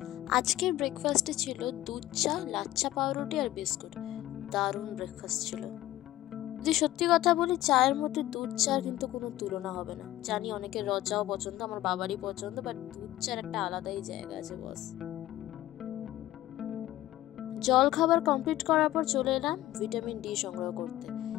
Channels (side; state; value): right; quieter; 15.2 dB